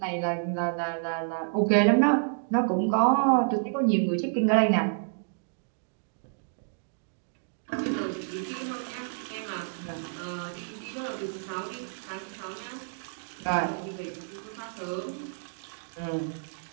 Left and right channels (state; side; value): silent; left; digital silence